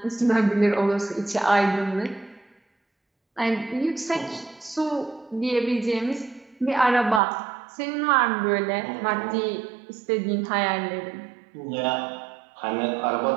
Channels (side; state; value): left; drops out; at 7.2 s